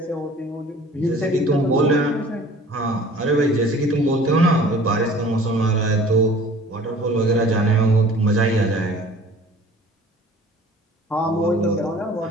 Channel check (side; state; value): both; normal; correlation 0.48